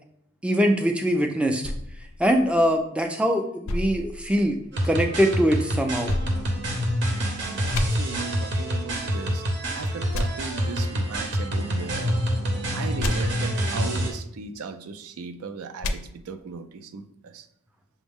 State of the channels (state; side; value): normal; both; correlation 0.79